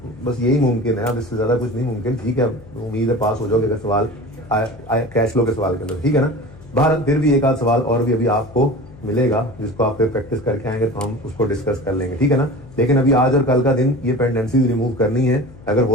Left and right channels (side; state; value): left; noise; hum, 21 dB below the sound